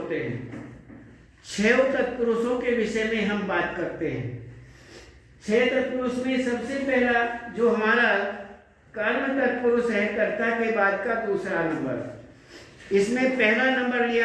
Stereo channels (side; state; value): both; identical; correlation 1.00